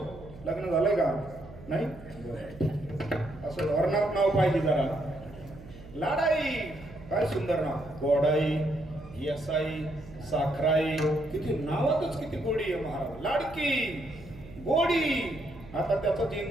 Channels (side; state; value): right; noise; hum, 18 dB below the sound